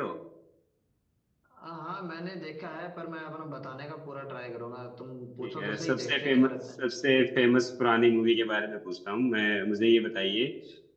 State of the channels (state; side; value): identical; both; correlation 1.00